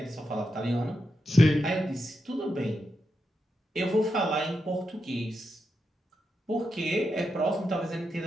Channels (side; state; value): both; normal; correlation 0.86